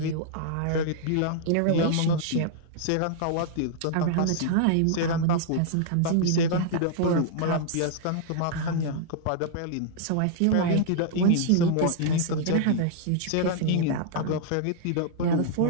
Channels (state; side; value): different; both; correlation -0.01